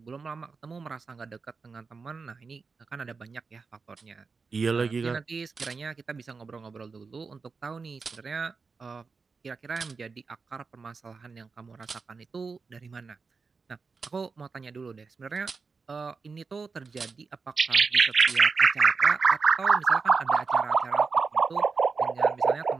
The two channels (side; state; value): left; quieter; 4.7 dB